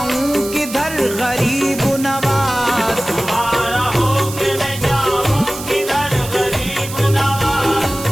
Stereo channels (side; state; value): right; noise; hiss, 11 dB below the sound